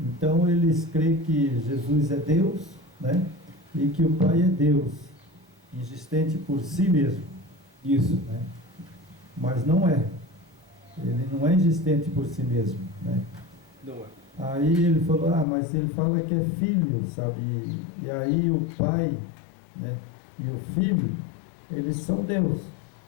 eles creem que Jesus é Deus, né, e que o Pai é Deus, existente por si mesmo. Isso. Né? Mas não é. Ele não é existente por si mesmo. Né? Não é. Aí ele falou: mas ele fala que é filho, sabe? E aí o Pai, né, e o Filho, eles são Deus.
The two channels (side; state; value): right; drops out; at 15.5 s